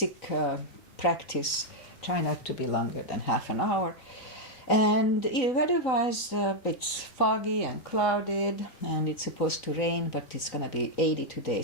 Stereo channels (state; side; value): late; right; 3.9 ms